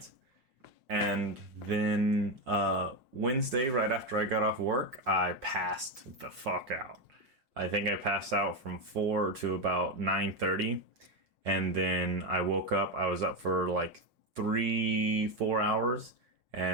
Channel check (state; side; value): late; left; 5.6 ms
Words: And then Wednesday, right after I got off work, I passed the fuck out. I think I passed out from 4 to about 9:30. And then I woke up. I was up for like 3, 4 hours